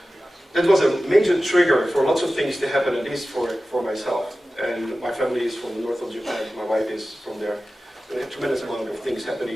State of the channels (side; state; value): both; normal; correlation 0.95